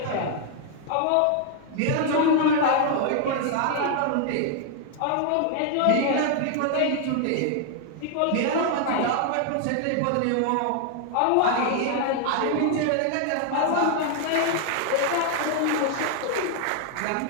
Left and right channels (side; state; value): both; different; correlation 0.00